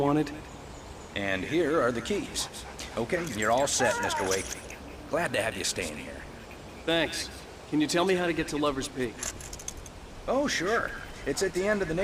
And here are the keys. Okay, you're all set, Mr. Wake. Glad to have you staying here. Thanks. Can you tell me how to get to Lover's Peak? Oh, sure. It's at the end of the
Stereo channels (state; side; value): identical; both; correlation 1.00